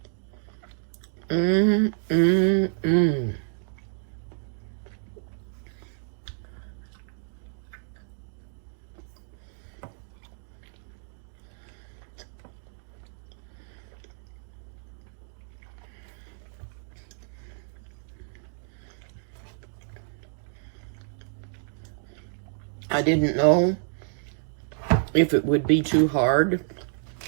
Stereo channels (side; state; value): left; silent; digital silence